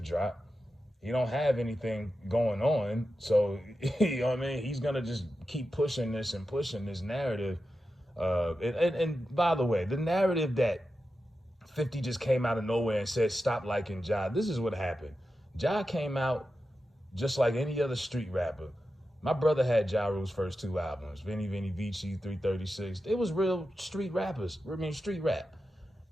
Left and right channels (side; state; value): both; normal; correlation 0.91